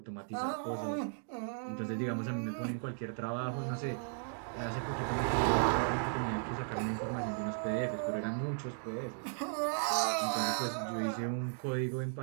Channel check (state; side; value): silent; left; digital silence